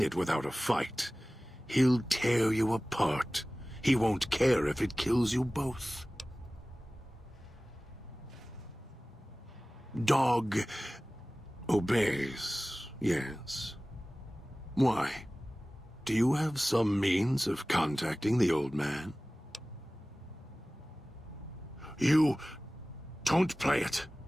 it without a fight. He'll tear you apart. He won't care if it kills you both. Dog obeys, yes. Why? Do you have some means of contacting the old man? You don't play it.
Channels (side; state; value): both; normal; correlation 0.98